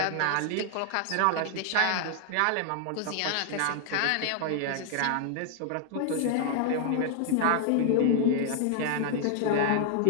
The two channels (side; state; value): both; different; correlation 0.00